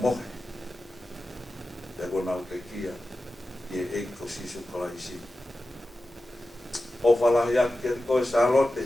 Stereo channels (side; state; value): both; normal; correlation 0.93